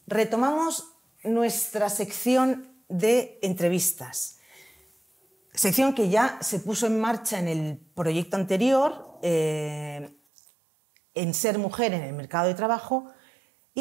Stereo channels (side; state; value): left; drops out; at 10.2 s